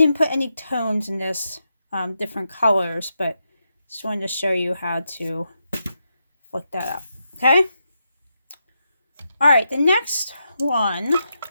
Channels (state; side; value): inverted; both; correlation -0.85